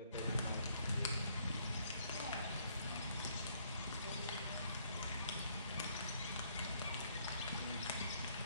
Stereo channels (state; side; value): inverted; both; correlation -0.68